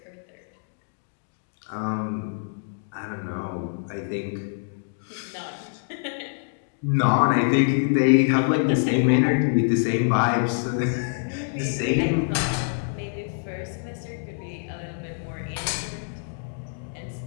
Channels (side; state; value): right; silent; digital silence